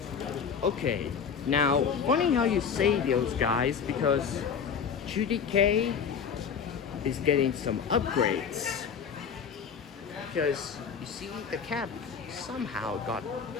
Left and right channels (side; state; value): right; quieter; 6.6 dB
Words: Okay, now, funny how you say those guys, because Judy K is getting some upgrades. Because, you see, the cap somehow got